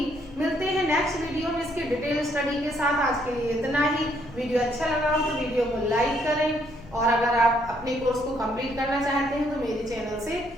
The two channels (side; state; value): left; noise; rumble, 20 dB below the sound